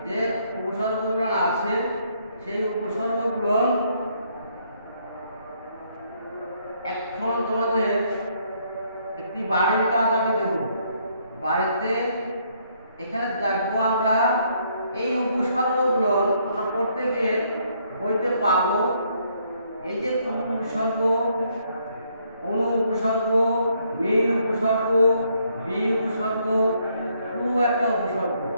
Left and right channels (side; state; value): both; inverted; correlation -0.70